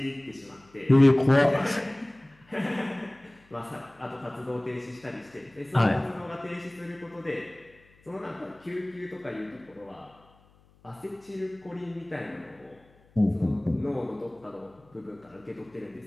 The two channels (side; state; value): left; noise; hum, 30 dB below the sound